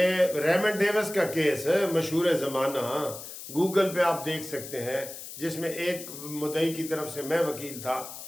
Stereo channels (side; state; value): left; noise; hiss, 11 dB below the sound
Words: ریمنڈ ڈیوس کا کیس ہے، مشہور زمانہ، گوگل پہ آپ دیکھ سکتے ہیں، جس میں ایک مدعی کی طرف سے میں وکیل تھا،